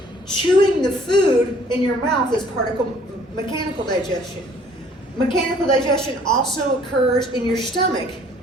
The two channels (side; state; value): both; normal; correlation 0.57